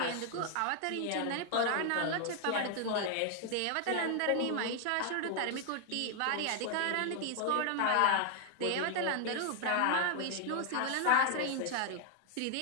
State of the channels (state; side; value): different; both; correlation 0.00